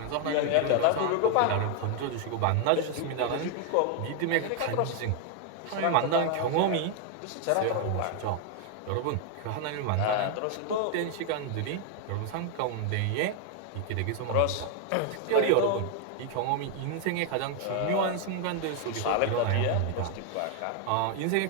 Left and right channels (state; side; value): different; both; correlation 0.00